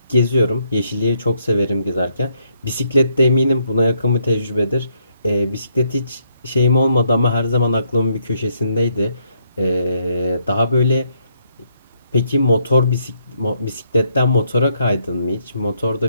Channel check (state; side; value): inverted; both; correlation -0.73